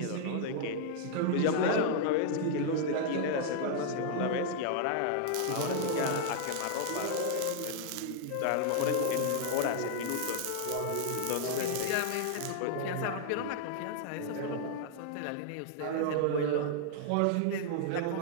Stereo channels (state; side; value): different; both; correlation -0.01